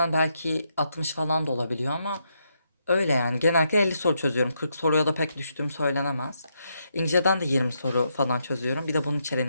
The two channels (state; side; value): inverted; both; correlation -0.79